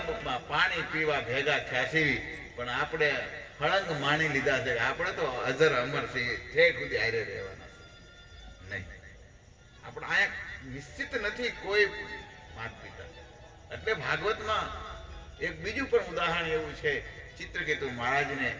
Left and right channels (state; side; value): identical; both; correlation 1.00